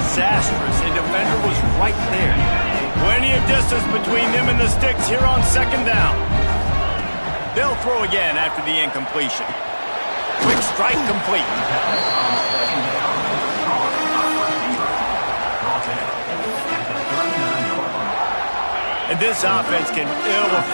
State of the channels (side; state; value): both; inverted; correlation -1.00